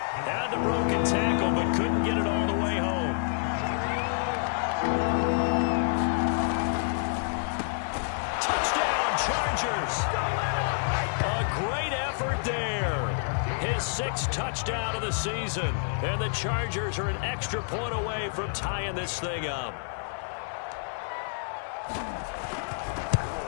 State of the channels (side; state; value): right; silent; digital silence